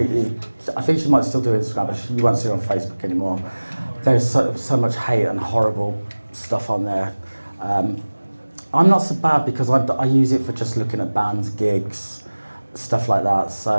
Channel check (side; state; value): both; inverted; correlation -1.00